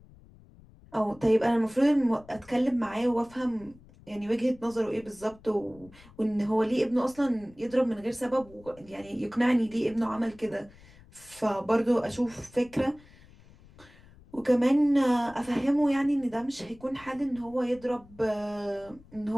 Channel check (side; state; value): left; noise; rumble, 24 dB below the sound